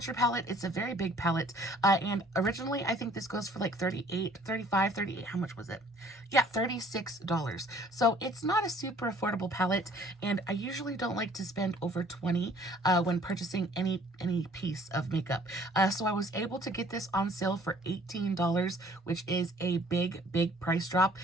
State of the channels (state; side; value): normal; both; correlation 0.56